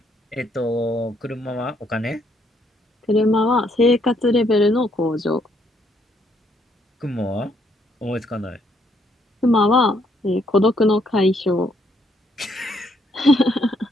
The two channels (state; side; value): normal; both; correlation 0.71